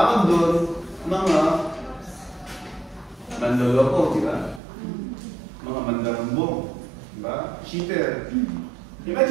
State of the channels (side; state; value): left; drops out; at 4.6 s